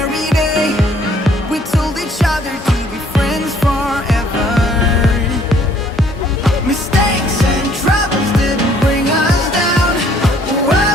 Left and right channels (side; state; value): both; normal; correlation 0.61